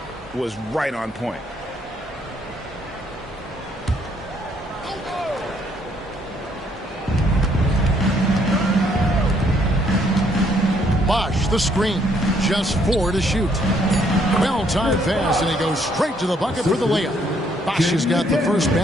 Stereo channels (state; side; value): normal; both; correlation 0.68